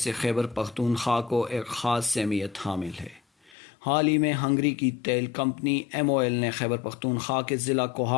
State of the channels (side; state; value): right; drops out; at 3.6 s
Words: خیبر پختونخوا کو ایک خاص اہمیت حامل ہے۔ حال ہی میں ہنگری کی تیل کمپنی MOL نے خیبر پختونخوا کے ضلع